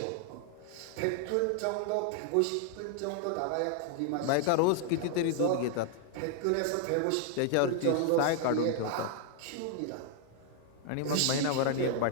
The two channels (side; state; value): both; different; correlation 0.00